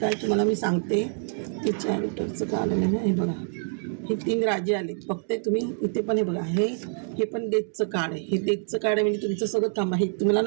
तुम्हाला मी सांगते ते चॅरिटरचं कार्ड आहे ना. हे बघा हे 3 राजे आले फक्त तुम्ही इथे पण. हे बघा हे पण डेथचं कार्ड आहे. हे डेथचं कार्ड आहे म्हणजे तुमचं सगळं थांबा. हे तुम्हाला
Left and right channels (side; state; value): left; silent; 61 dB below the other